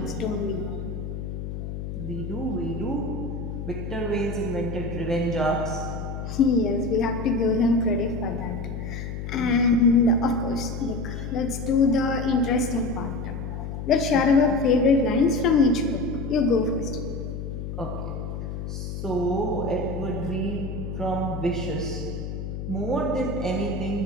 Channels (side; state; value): left; noise; hum, 6 dB below the sound